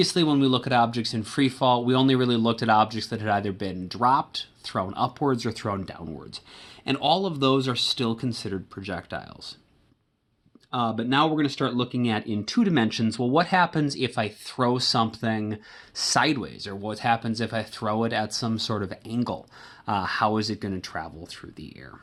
when we look at objects in free fall, we only really looked at objects that had either been dropped, thrown upwards, or thrown downwards. And all of those are still considered projectiles. But now we're going to start looking at, in 2 dimensions, well, what happens if I throw something sideways? Or what happens if I throw it at some sort of angle? How is it going to travel through the air?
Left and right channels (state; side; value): identical; both; correlation 1.00